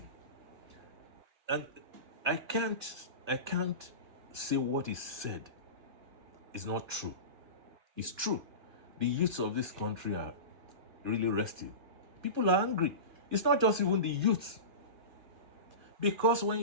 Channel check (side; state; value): left; late; 2.5 ms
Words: And I can't say what is said is not true. It's true. The youths of this country are really restive. People are angry. It's not just even the youths. Because when